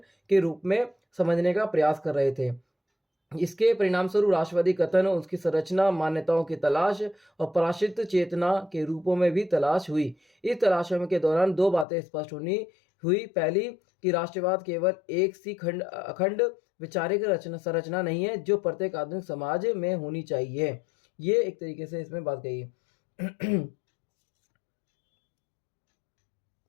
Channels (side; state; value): right; drops out; at 11.9 s